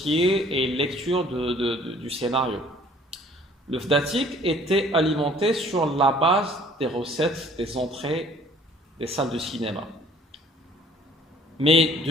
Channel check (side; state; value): both; normal; correlation 0.55